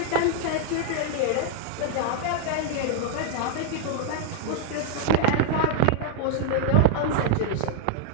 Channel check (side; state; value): both; different; correlation 0.00